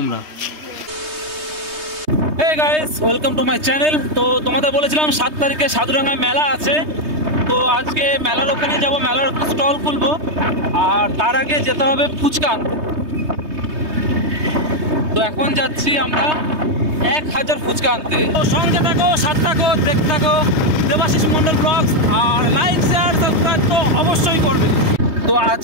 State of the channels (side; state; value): left; late; 3.2 ms